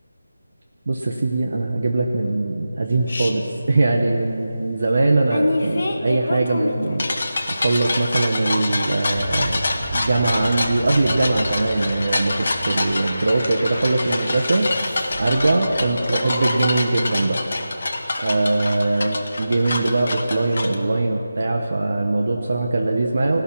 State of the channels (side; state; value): both; inverted; correlation -0.93